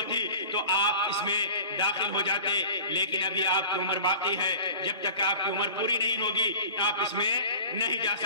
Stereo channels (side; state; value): both; inverted; correlation -0.40